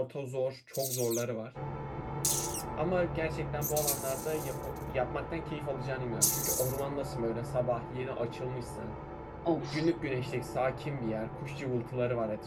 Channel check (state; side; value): identical; both; correlation 1.00